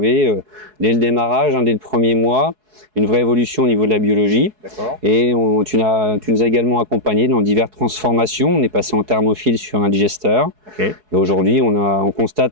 dès le démarrage, dès le premier mois, une vraie évolution au niveau de la biologie. D'accord. Et tu nous as également accompagné dans diverses transformations. On est passé en thermophile sur un digesteur. Okay. Et aujourd'hui, on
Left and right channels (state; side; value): late; left; 4.7 ms